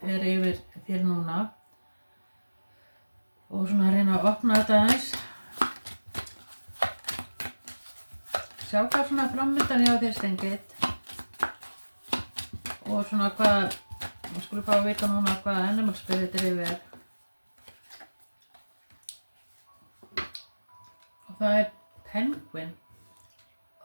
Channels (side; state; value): both; inverted; correlation -1.00